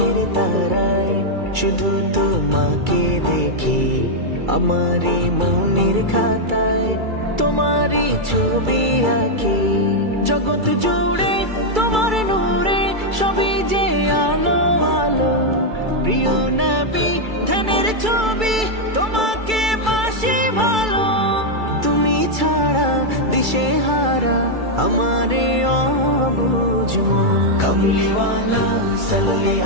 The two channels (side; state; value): left; late; 2.3 ms